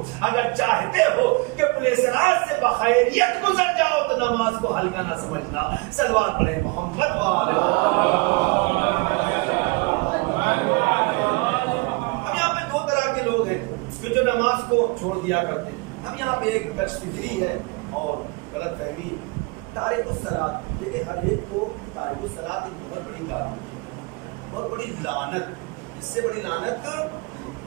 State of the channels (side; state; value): left; quieter; 28.1 dB